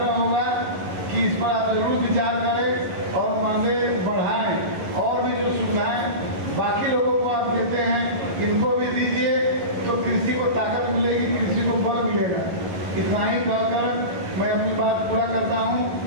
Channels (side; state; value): left; late; 11 ms